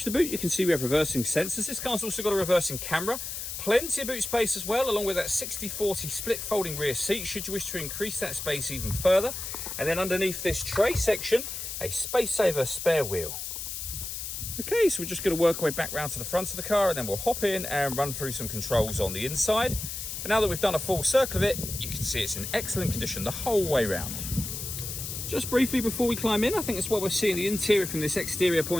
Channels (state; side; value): noise; left; hiss, 6 dB below the sound